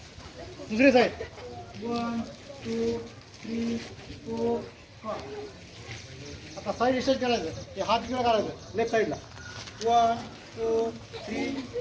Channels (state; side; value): identical; both; correlation 1.00